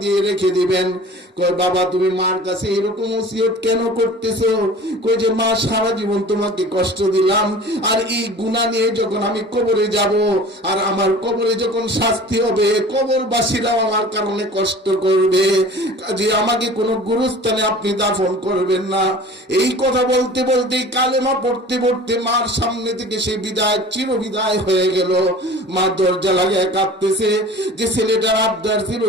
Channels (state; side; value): normal; both; correlation 0.42